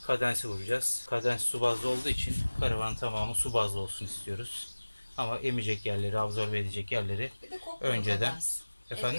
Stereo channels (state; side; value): inverted; both; correlation -1.00